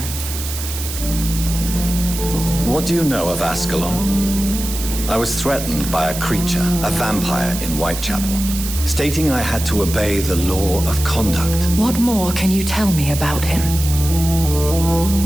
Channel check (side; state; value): right; noise; hiss, 8 dB below the sound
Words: What do you know of Ascalon? I was threatened by a creature, a vampire in Whitechapel, stating I had to obey the law of conduct. What more can you tell me about him?